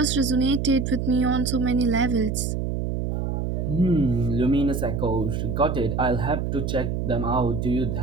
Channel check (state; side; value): noise; right; hum, 1 dB below the sound